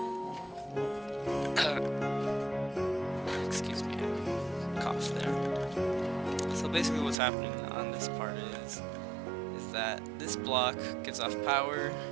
excuse me, I coughed there. So basically what's happening on this part is that this block gives off power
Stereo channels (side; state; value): left; drops out; at 7.2 s